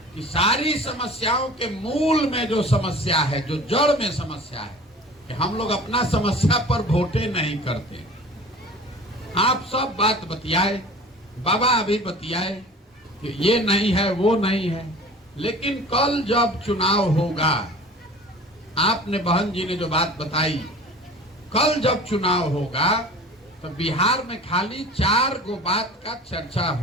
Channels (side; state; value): both; normal; correlation 0.42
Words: कि सारी समस्याओं के मूल में जो समस्या है, जो जड़ में समस्या है, कि हम लोग अपना समस्या पर वोटे नहीं करते। आप सब बात बतियाए, बाबा अभी बतियाए कि ये नहीं है वो नहीं है, लेकिन कल जब चुनाव होगा, आपने बहन जी ने जो बात बताई, कल जब चुनाव होगा तो बिहार में खाली 4 गो बात का चर्चा